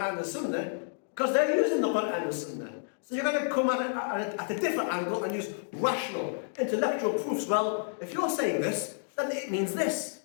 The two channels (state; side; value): silent; right; digital silence